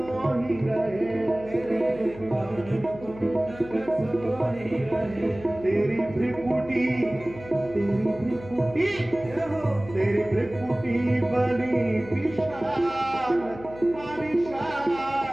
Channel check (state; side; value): noise; left; hum, 16 dB below the sound